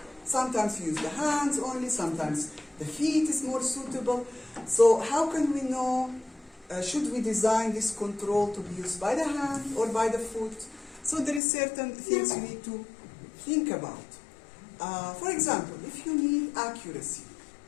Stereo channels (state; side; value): drops out; right; at 11.4 s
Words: sometimes you use the hands only, sometimes the feet is more suitable. So how can we know, should we design this control to be used by the hand or by the foot? So there is certain things you need to think about. For example, if you need accuracy,